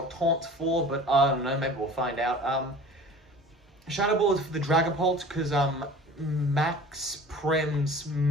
Taunt's for, but I don't know, maybe we'll find out. Shadow Ball is for the Dragapult, because Max Prim's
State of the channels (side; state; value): both; normal; correlation 0.42